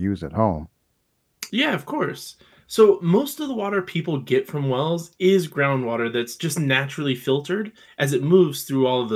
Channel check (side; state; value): both; identical; correlation 1.00